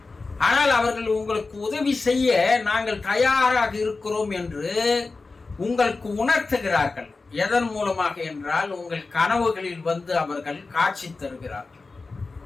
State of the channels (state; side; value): quieter; right; 3.9 dB